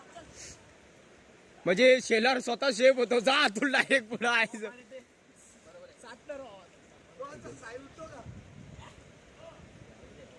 म्हणजे शेलर स्वतः शेप होतो जा अतुल डायरेक्ट पुढं आहे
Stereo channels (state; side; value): identical; both; correlation 1.00